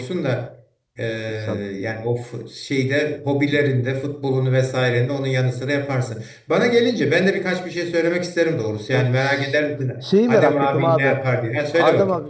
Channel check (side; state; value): both; identical; correlation 1.00